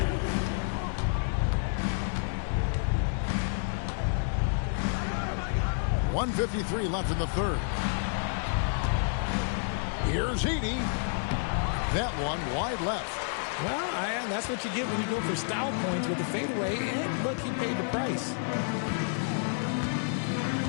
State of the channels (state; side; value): silent; right; digital silence